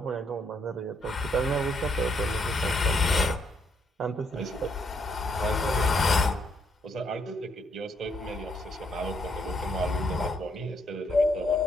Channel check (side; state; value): both; normal; correlation 0.73